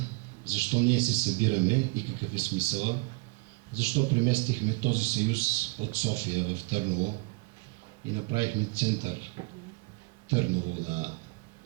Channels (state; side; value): quieter; left; 28.1 dB